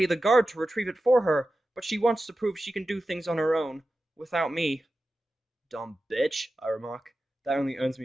the guard to retrieve it for her, but she wants to prove she can do things on her own, without me. Dumb bitch, I remark. That only earns me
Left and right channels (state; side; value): normal; both; correlation 0.93